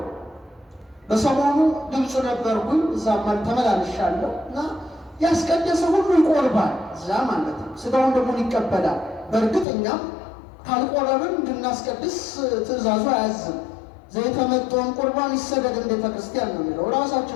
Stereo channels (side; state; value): right; drops out; at 9.7 s